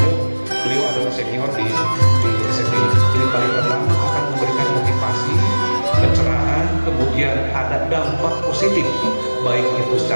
beliau adalah senior di SMP. Jadi paling pertama akan memberikan motivasi, pencerahan, kemudian ada dampak positif baik itu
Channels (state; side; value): inverted; both; correlation -1.00